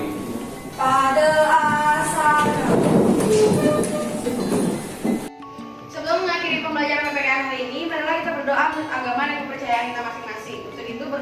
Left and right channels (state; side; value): identical; both; correlation 1.00